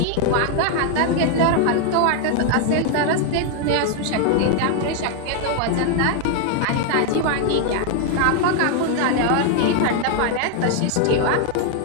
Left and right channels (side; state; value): both; different; correlation 0.00